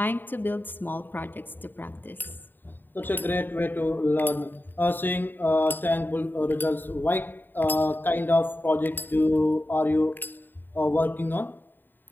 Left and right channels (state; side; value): late; right; 0.092 ms